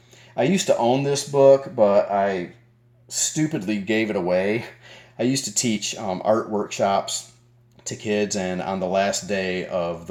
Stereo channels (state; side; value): identical; both; correlation 1.00